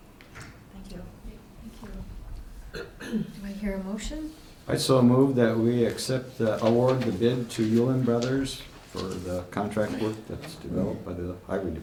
Thank you. Do I hear a motion? I so move that we award the bid to Yulin Brothers for the contract work that's developed by the Highway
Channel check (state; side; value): identical; both; correlation 1.00